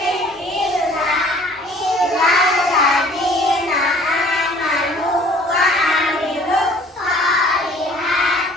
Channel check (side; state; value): both; normal; correlation 0.53